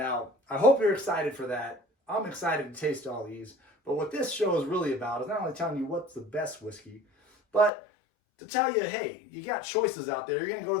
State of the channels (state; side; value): drops out; right; at 7.7 s